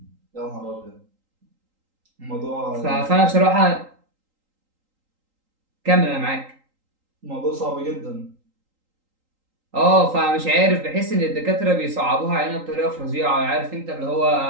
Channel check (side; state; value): left; late; 3.8 ms